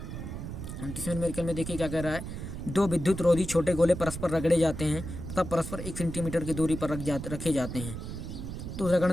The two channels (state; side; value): noise; right; rumble, 7 dB below the sound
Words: 29वें न्यूमेरिकल में देखिए क्या कह रहा है। 2 विद्युत रोधी छोटे गोले परस्पर रगड़े जाते हैं तथा परस्पर 1 सेंटीमीटर की दूरी पर रखे जाते हैं। तो